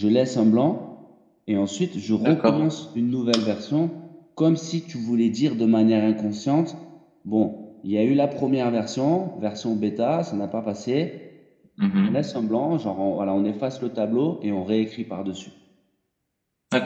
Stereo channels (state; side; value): identical; both; correlation 1.00